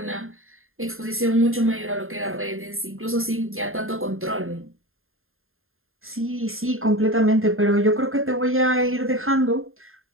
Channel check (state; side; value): late; left; 0.61 ms